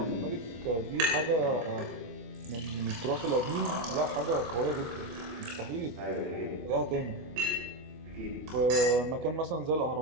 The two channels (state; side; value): late; left; 25 ms